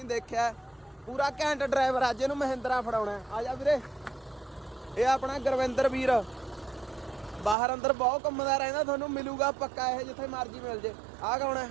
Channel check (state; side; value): drops out; left; at 7.6 s